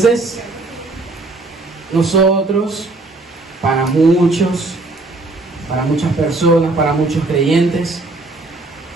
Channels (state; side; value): quieter; left; 3.1 dB